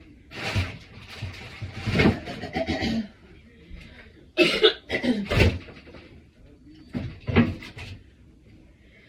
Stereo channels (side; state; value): both; identical; correlation 1.00